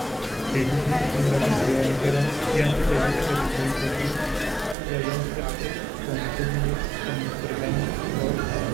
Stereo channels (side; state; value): left; drops out; at 4.8 s